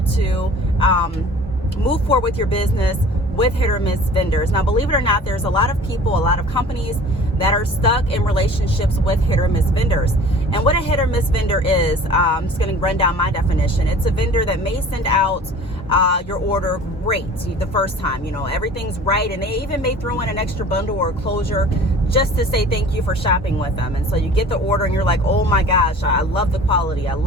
to move forward with your business with hit or miss vendors. Now, believe it or not, there's a lot of people, a lot of companies that are stuck in relationships with hit or miss vendors. And what a hit or miss vendor is, I'm just going to run down my definition. It's a vendor that may send out your order great the first time, everything's right, and they even may throw in an extra bundle or a closure just to say thank you for shopping with them. And so you get the order and you're like, oh my gosh, I love the quality, I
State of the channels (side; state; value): both; normal; correlation 0.45